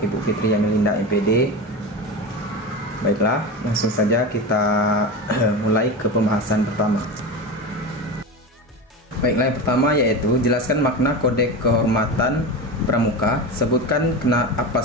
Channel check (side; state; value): both; normal; correlation 0.23